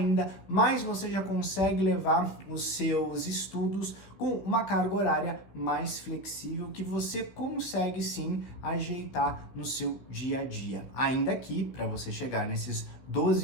mas você já consegue levar os seus estudos com uma carga horária mais flexível, que você consegue sim ajeitar no no seu dia a dia. Ainda que, para você chegar nesses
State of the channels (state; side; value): late; right; 15 ms